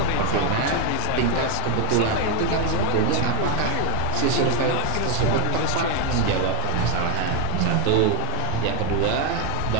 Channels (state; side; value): different; both; correlation 0.00